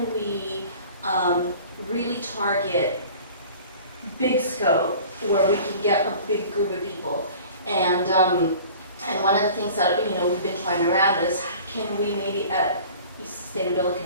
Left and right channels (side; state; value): both; inverted; correlation -0.44